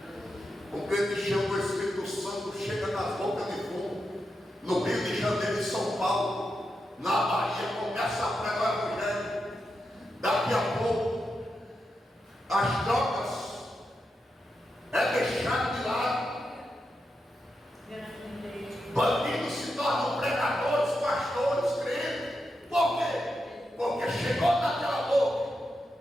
O crente cheio do Espírito Santo chega nas bocas de fundo, no Rio de Janeiro e São Paulo, na Bahia, começa a pregar o evangelho. Daqui a pouco, as drogas é deixado de lado. Bandidos se tornam pregadores, pastores, crentes. Por quê? Porque chegou naquela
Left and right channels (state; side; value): normal; both; correlation 0.87